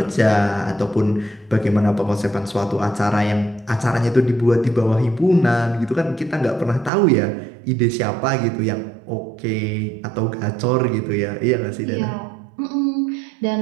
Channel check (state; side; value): drops out; left; at 6.9 s